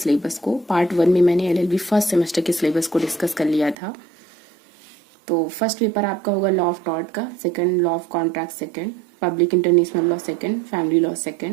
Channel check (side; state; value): left; drops out; at 3.8 s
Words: को। पार्ट 1 में मैंने LLB फर्स्ट सेमेस्टर के सिलेबस को डिस्कस कर लिया था। तो फर्स्ट पेपर आपका होगा लॉ ऑफ टॉर्ट का, second law of contract second, public international law second, family law